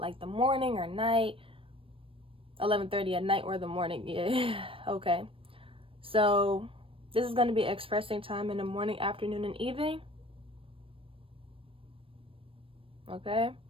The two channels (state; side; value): late; left; 0.26 ms